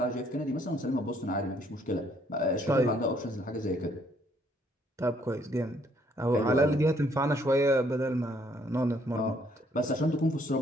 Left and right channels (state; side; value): normal; both; correlation 0.67